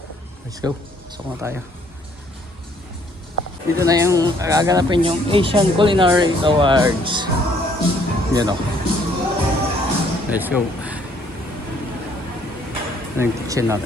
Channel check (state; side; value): normal; both; correlation 0.63